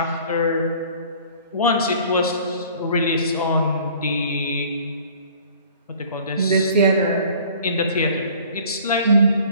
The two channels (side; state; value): both; inverted; correlation -0.50